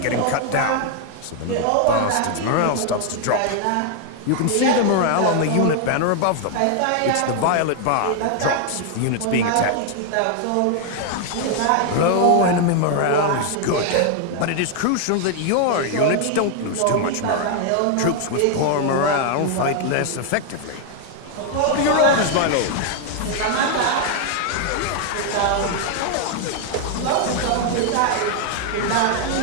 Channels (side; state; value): both; different; correlation 0.00